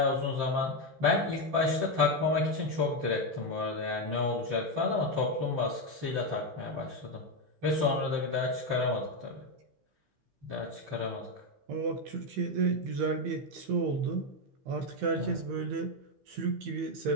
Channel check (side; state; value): left; late; 15 ms